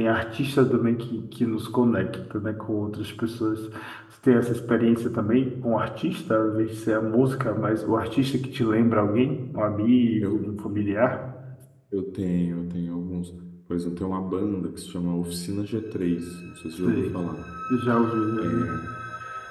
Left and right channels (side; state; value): both; identical; correlation 1.00